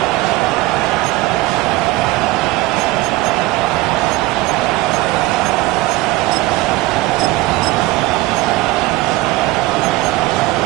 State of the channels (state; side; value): quieter; left; 19.3 dB